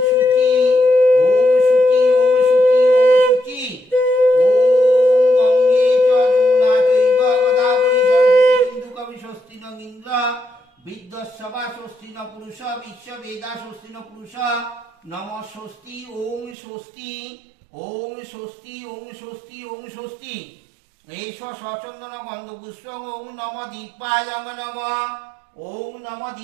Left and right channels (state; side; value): drops out; left; at 16.6 s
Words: শুচি ওম শুচি ওম শুচি ওম শুচি ওম গঙ্গে চ যমুনা চৈব গোদাবরী সরস্বতী সিন্ধু কবি স্বস্তি নং ইন্দ্র বিদ্যস্যবা স্বস্তি ন পুরুষ বিশ্ব বেদা স্বস্তি ন পুরুষ নম স্বস্তি ওম স্বস্তি ওম স্বস্তি ওম স্বস্তি ওম স্বস্তি এষ সচন্দন গন্ধ পুষ্প ওম নম দীপায় নম ওম নম